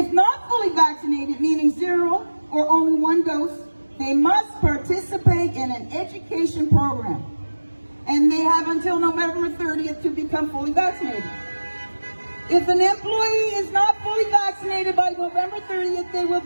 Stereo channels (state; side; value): inverted; both; correlation -1.00